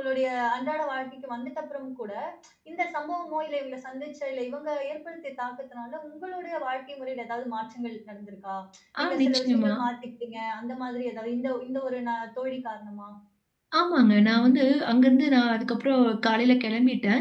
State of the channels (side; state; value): both; identical; correlation 1.00